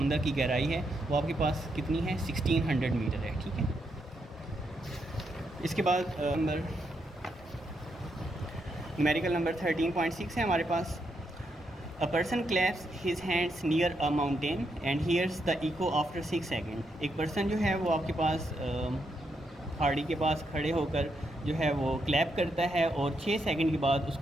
की गहराई है वो आपके पास कितनी है 1600 मीटर है, ठीक है। इसके बाद न्यूमेरिकल नंबर 13.6 है हमारे पास। A person claps his hands near a mountain and hears the echo after 6 second. एक पर्सन जो है वो आपके पास पहाड़ी के पास खड़े होकर जो है वो क्लैप करता है और 6 सेकंड के बाद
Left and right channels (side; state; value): both; normal; correlation 0.80